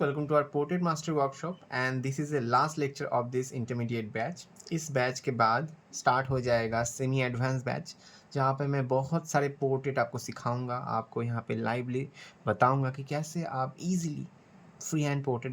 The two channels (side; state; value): both; identical; correlation 1.00